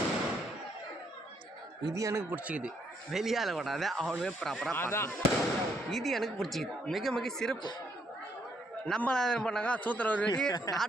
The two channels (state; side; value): normal; both; correlation 0.72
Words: இது எனக்கு பிடிச்சிக்குது. வெளியால் விடாத அவனுமே ப்ராப்பராக அதான் இது எனக்கு பிடிச்சிக்குது. மிக மிக சிறப்பு. நம்ம என்ன பண்ணாங்க, சூத்திர ஒரு வெடி,